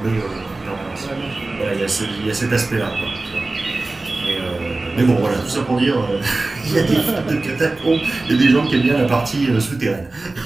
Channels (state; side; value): quieter; left; 3.2 dB